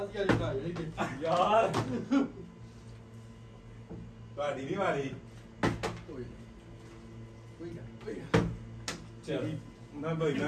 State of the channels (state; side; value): identical; both; correlation 1.00